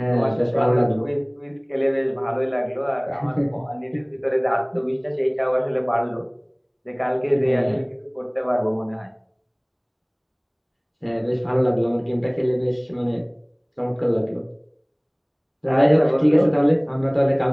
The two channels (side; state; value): both; identical; correlation 1.00